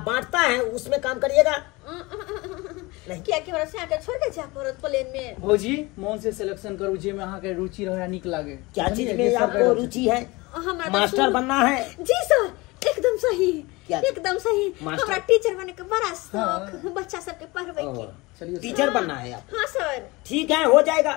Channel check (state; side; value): quieter; right; 23.3 dB